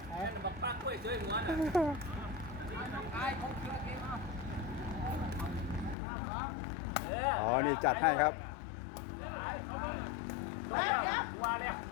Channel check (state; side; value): drops out; right; at 6.0 s